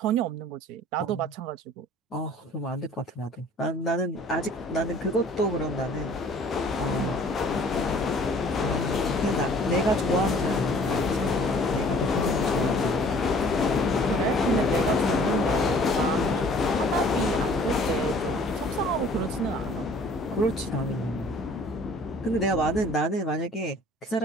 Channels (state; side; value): normal; both; correlation 0.52